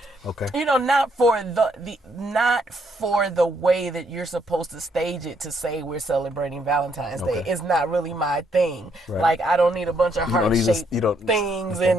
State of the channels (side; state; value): both; normal; correlation 0.72